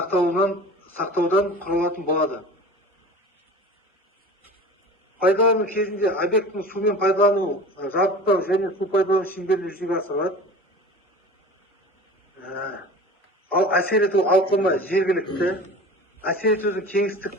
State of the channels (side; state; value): both; normal; correlation 0.37